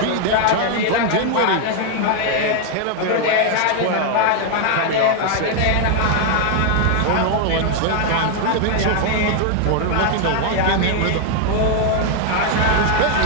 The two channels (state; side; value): different; both; correlation 0.00